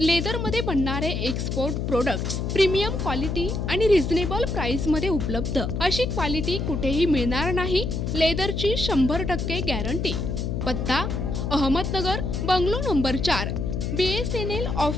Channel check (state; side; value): noise; left; hum, 2 dB below the sound